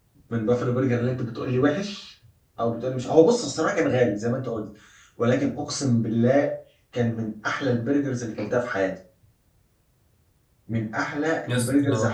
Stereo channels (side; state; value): both; identical; correlation 1.00